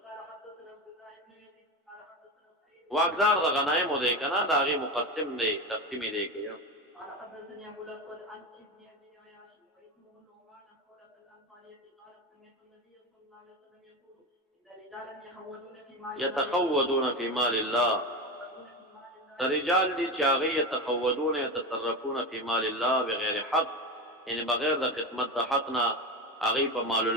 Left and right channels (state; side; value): normal; both; correlation 0.21